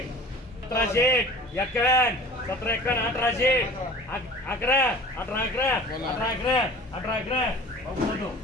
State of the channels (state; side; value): normal; both; correlation 0.42